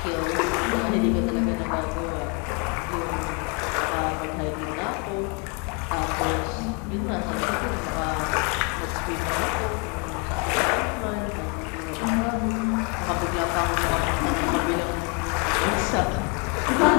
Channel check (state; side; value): quieter; right; 34.1 dB